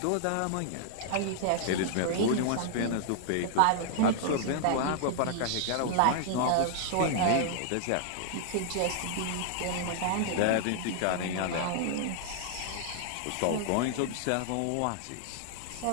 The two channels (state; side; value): different; both; correlation -0.01